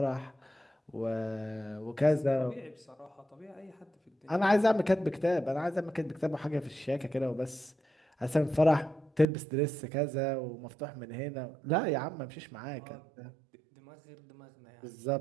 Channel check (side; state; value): left; drops out; at 9.2 s